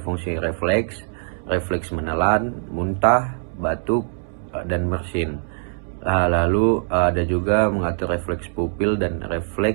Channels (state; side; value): silent; left; 64 dB below the other